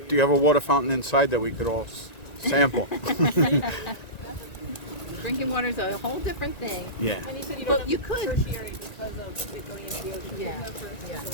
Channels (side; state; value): right; late; 1.9 ms